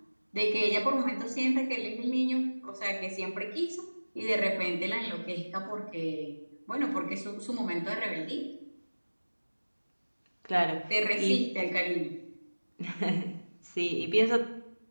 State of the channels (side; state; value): both; inverted; correlation -1.00